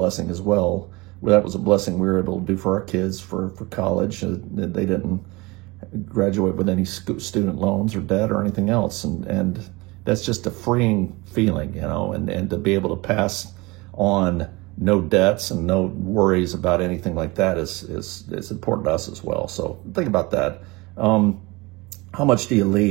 as well. That was a blessing we were able to do for our kids for college. They didn't graduate with any student loans or debt or anything else. And that's just a freeing feeling, and to be able to pass on no debts and no worries about anything like that is important to us as well. So think about that. how much do you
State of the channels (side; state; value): left; quieter; 23.8 dB